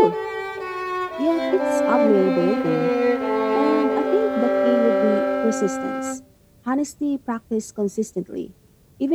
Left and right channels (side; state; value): both; identical; correlation 1.00